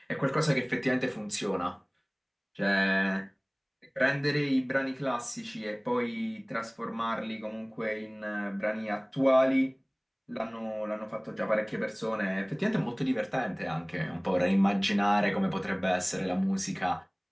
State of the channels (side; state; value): both; identical; correlation 1.00